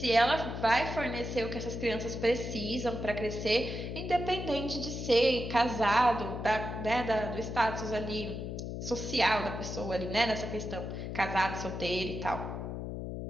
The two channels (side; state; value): left; noise; hum, 5 dB below the sound